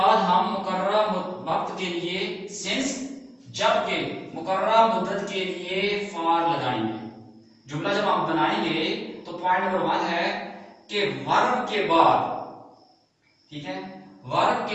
ہم مقررہ وقت کے لیے سنس جبکہ مقررہ مدت کے لیے فار لگائیں گے۔ جملہ جب ہم بنائیں گے تو پوائنٹ نمبر 1 ہے کہ ورب کے بعد، ٹھیک ہے، ورب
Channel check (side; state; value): both; identical; correlation 1.00